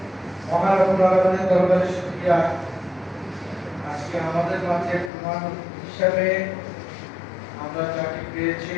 মহান আল্লাহর দরবারে শুকরিয়া আজকে আমাদের মাঝে প্রধান হিসেবে আমরা যাকে পেয়েছি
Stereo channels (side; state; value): right; drops out; at 5.1 s